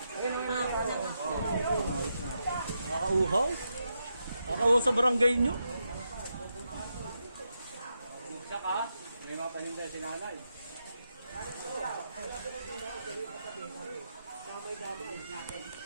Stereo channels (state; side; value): inverted; both; correlation -0.84